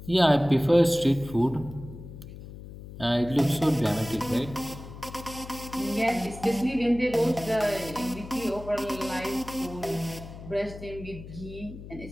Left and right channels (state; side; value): noise; left; hum, 14 dB below the sound